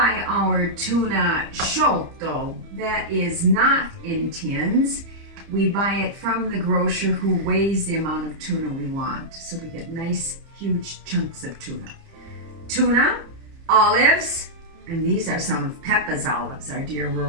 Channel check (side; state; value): left; late; 30 ms